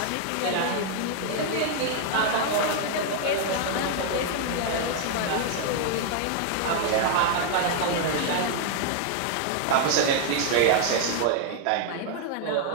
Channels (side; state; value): both; different; correlation 0.00